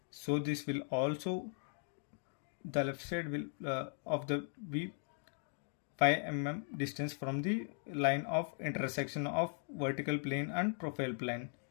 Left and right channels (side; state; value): right; silent; 52 dB below the other